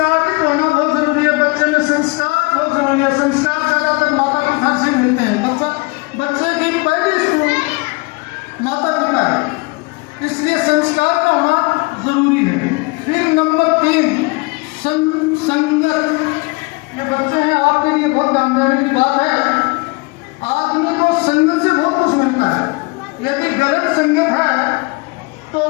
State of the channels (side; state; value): right; quieter; 27.2 dB